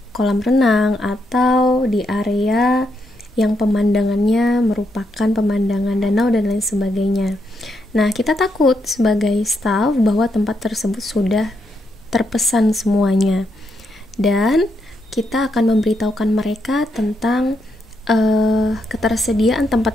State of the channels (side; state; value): both; normal; correlation 0.79